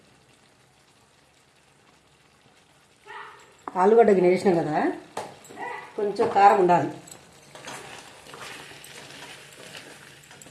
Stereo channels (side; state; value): both; identical; correlation 1.00